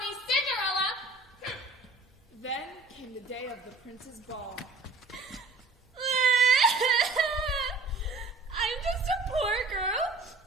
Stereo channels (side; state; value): left; quieter; 3.5 dB